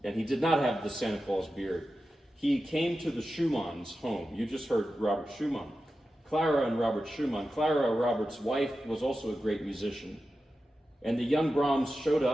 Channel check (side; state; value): both; normal; correlation 0.92